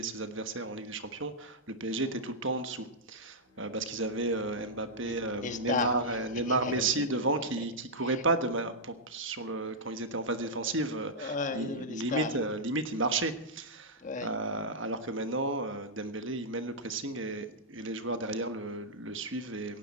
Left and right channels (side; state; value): both; normal; correlation -0.08